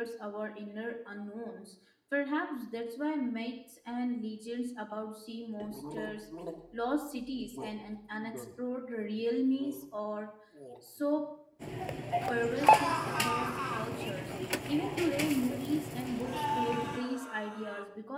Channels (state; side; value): identical; both; correlation 1.00